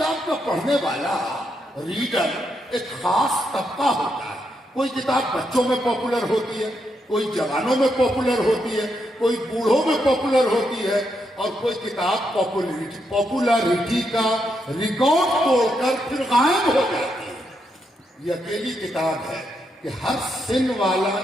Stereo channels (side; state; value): both; normal; correlation 0.81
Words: کا پڑھنے والا ریڈر ایک خاص طبقہ ہوتا ہے. کوئی کتاب بچوں میں پاپولر ہوتی ہے, کوئی جوانوں میں پاپولر ہوتی ہے, کوئی بوڑھوں میں پاپولر ہوتی ہے, اور کوئی کتاب پاپولرٹی کا ریکارڈ توڑ کر پھر غائب ہو جاتی ہے. یہ اکیلی کتاب ہے کہ ہر سن والا